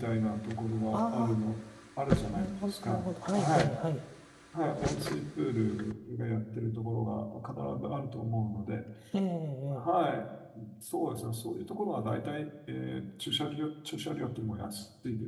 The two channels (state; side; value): identical; both; correlation 1.00